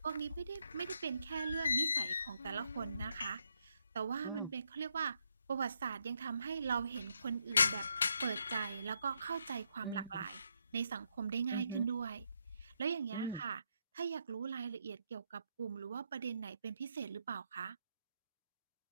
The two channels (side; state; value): both; inverted; correlation -0.78